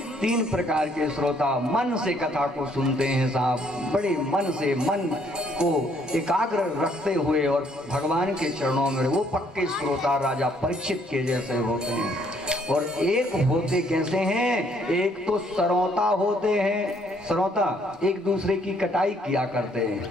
तीन प्रकार के श्रोता मन से कथा को सुनते हैं साहब, बड़े मन से, मन को एकाग्र रखते हुए और भगवान के चरणों में। वो पक्के श्रोता राजा परीक्षित के जैसे होते हैं। और एक होते कैसे हैं? एक तो सरौता होते हैं। श्रोता एक दूसरे की कटाई किया करते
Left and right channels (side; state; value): both; normal; correlation 0.66